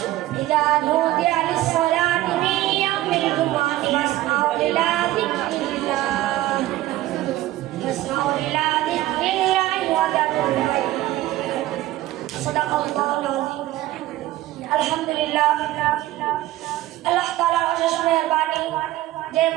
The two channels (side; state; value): left; quieter; 15.8 dB